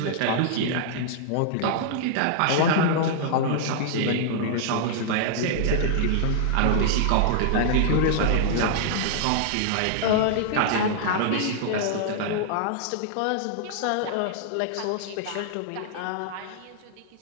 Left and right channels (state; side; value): different; both; correlation -0.01